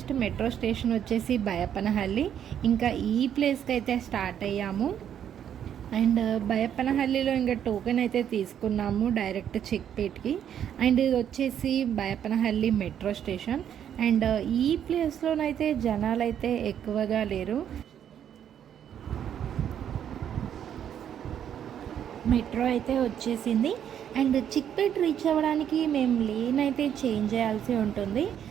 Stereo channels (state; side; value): quieter; left; 9.4 dB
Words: మెట్రో స్టేషన్ వచ్చేసి బయప్పనహల్లి. ఇంకా ఈ ప్లేస్కి అయితే స్టార్ట్ అయ్యాము. అండ్ బయప్పనహల్లిలో ఇంకా టోకెన్ అయితే తీసుకున్నాము డైరెక్ట్ చిక్పేట్కి. అండ్ ఇది వచ్చేసి బయప్పనహల్లి మెట్రో స్టేషన్. అండ్ ఈ ప్లేస్లోనైతే జనాలు అయితే ఎక్కువగా లేరు. మెట్రో అయితే వచ్చేసింది. అండ్ చిక్పేట్ రీచ్ అవ్వడానికి మేము లేన్ అయితే చేంజ్ చేయాల్సి ఉంటుంది.